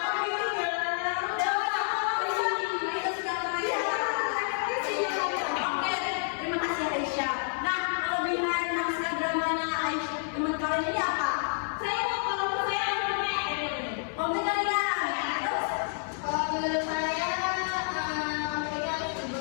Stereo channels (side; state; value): right; silent; 58 dB below the other